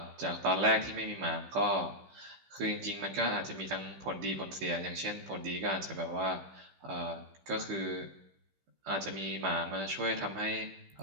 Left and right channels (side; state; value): left; late; 15 ms